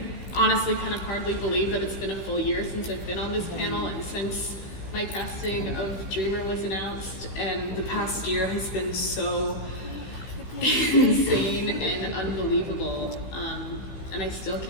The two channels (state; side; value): late; right; 16 ms